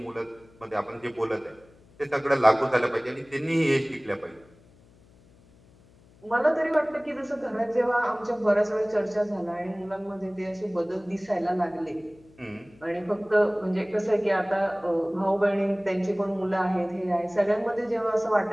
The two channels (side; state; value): left; noise; hum, 28 dB below the sound